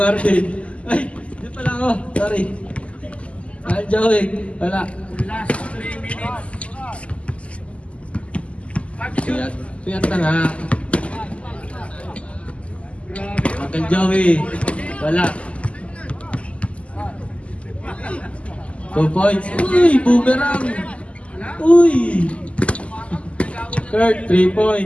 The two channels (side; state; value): right; late; 0.060 ms